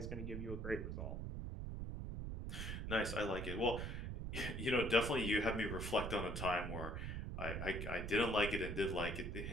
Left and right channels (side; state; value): right; noise; rumble, 4 dB below the sound